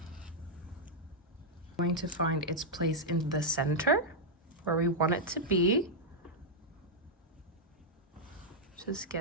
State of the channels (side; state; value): both; normal; correlation -0.04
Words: Going to find its place in the center where we want it to be. Just